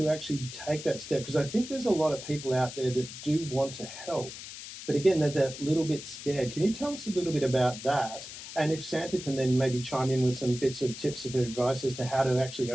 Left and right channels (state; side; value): noise; left; hiss, 12 dB below the sound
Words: actually take that step? Because I think there's a lot of people out there that do want to help, but again, they're that little bit scared. Can you tell us a little bit about that? And if Santa can then maybe chime in with some bits of tips of advice as to how to actually